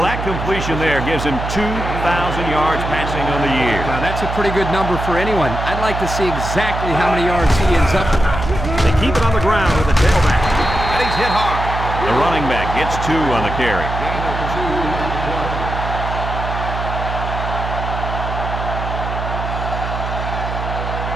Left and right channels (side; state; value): right; noise; hum, 5 dB below the sound